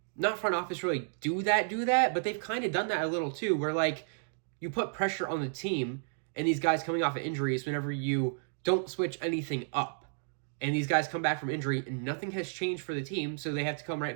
not front office really do that, but they've kind of done that a little too, where, like, you put pressure on the team and these guys coming off of injuries whenever you don't switch anything up. And these guys come back from injury and nothing has changed for the team, so they have to come right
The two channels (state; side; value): silent; left; digital silence